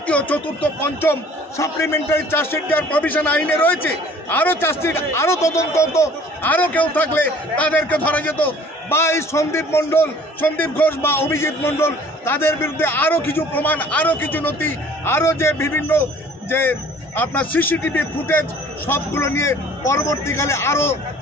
চতুর্থ, পঞ্চম সাপ্লিমেন্টারি চার্জশিট দেওয়ার প্রভিশন আইনে রয়েছে। আরও চার্জশিট, আরও তদন্ত হতো, আরও কেউ থাকলে তাদেরকে ধরা যেত। বা এই সন্দীপ ঘোষ বা অভিজিৎ মণ্ডল তাদের বিরুদ্ধে আরও কিছু প্রমাণ, আরও কিছু নথি, আরও যে বিভিন্ন যে আপনার সিসিটিভি ফুটেজ সবগুলো নিয়ে পরবর্তীকালে আরও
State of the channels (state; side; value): normal; both; correlation 0.51